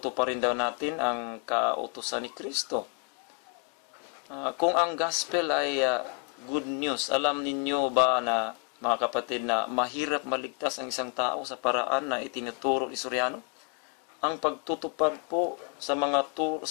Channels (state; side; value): quieter; right; 39.8 dB